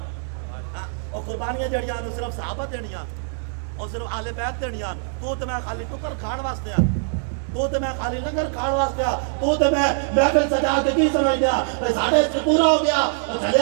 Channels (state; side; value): silent; left; digital silence